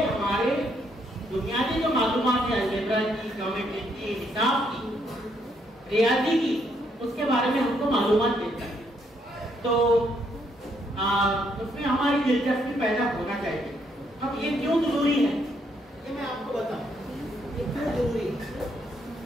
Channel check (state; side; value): normal; both; correlation 0.73